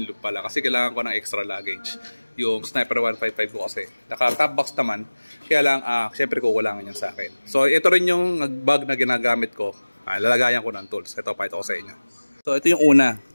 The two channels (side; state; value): both; inverted; correlation -1.00